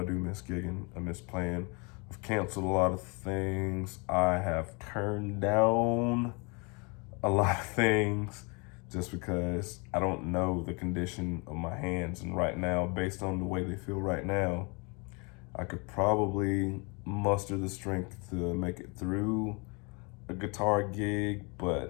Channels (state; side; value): quieter; right; 31.2 dB